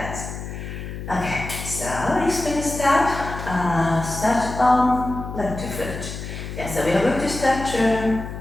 Okay, so explain step. Start on left foot. Yes, so we are going to start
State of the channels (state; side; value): noise; left; hum, 8 dB below the sound